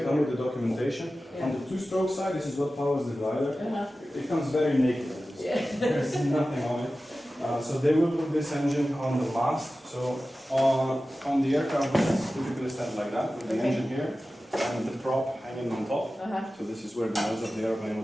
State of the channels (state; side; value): normal; both; correlation 0.95